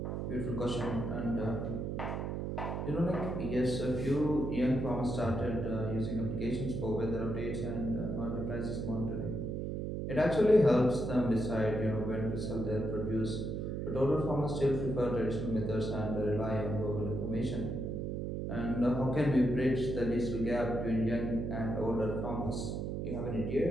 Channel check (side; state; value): right; noise; hum, 2 dB below the sound